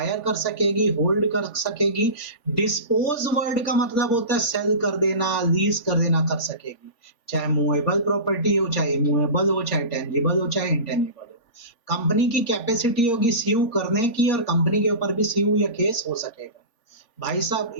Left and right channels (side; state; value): right; late; 3.5 ms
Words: कर सकेगी, होल्ड कर सकेगी। डिस्पोज वर्ड का मतलब होता है सेल कर देना, लीज कर देना, कर सकेगी। चाहे मूवेबल प्रॉपर्टी हो, चाहे इमूवेबल हो, चाहे टेंजिबल हो, चाहे इंटेंजिबल हो। कंपनी की कैपेसिटी होगी सीव करने की, और कंपनी के ऊपर भी सीव या केस हो सकेगा। भाई साहब,